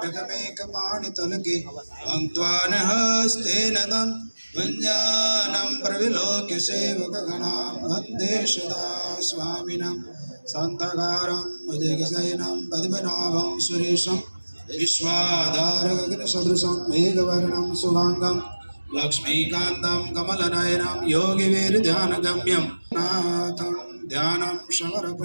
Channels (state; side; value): inverted; both; correlation -1.00